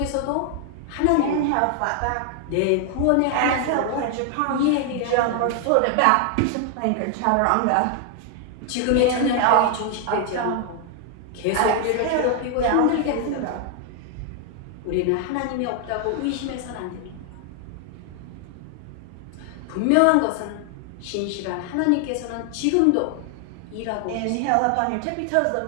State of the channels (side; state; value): both; different; correlation 0.00